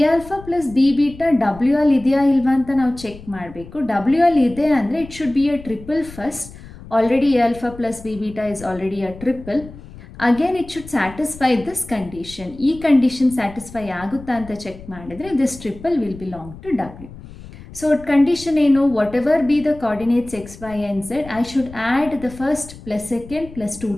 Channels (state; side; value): noise; left; rumble, 17 dB below the sound